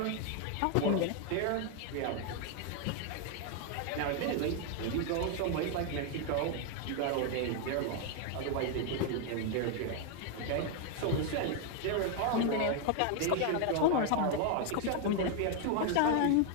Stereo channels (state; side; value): different; both; correlation 0.00